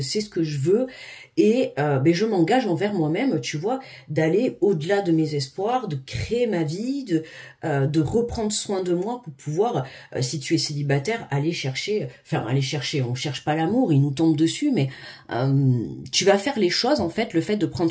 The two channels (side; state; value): both; identical; correlation 1.00